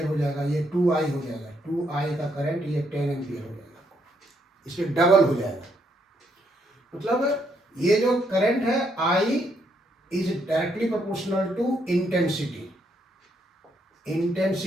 हो जाएगा, ये 2I हो जाएगा। 2I का करंट ये 10 एम्पियर हो जाएगा, इसलिए डबल हो जाएगा। मतलब ये जो करंट है I is directly proportional to intensity.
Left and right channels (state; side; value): normal; both; correlation 0.74